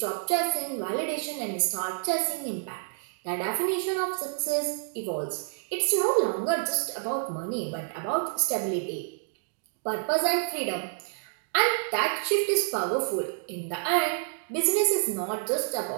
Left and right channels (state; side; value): silent; left; digital silence